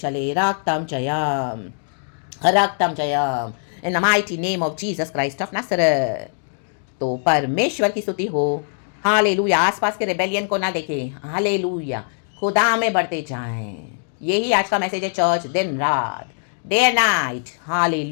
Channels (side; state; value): right; silent; digital silence